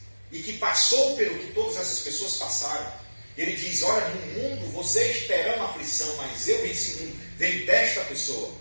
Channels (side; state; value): both; inverted; correlation -1.00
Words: e que passou pelo que todas essas pessoas passaram. Ele diz: olha, no mundo vocês terão aflição, mas eu venci o mundo. Vem desta pessoa,